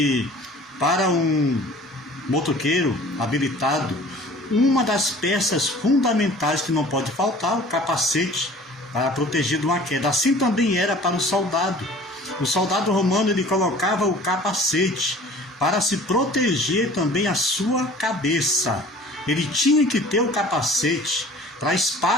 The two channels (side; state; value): both; normal; correlation 0.47